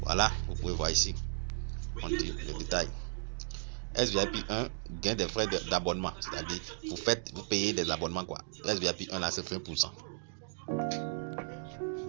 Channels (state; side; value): silent; left; digital silence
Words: Voilà, vous pouvez voir ici. On dit le détail. SVIP 1 gain des frais d'abonnement, c'est-à-dire vous payez des abonnements quoi. SVIP 1 là c'est 20%.